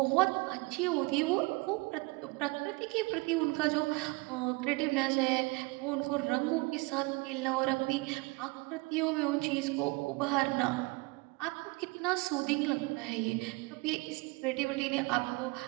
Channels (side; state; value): left; quieter; 26.3 dB